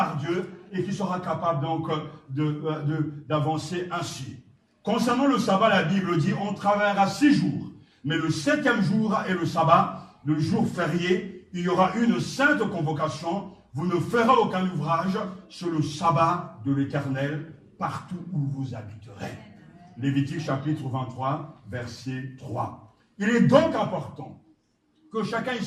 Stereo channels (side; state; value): both; identical; correlation 1.00